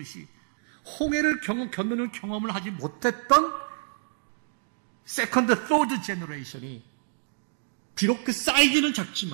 홍해를 건너는 경험을 하지 못했던 세컨드, 서드 제너레이션이 비록 그 사이즈는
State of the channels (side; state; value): left; silent; digital silence